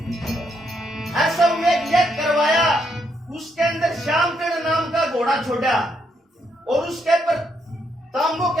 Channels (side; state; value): both; normal; correlation 0.76